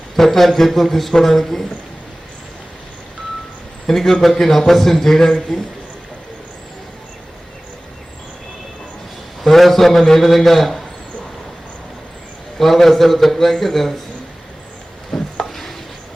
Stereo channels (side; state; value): both; normal; correlation 0.98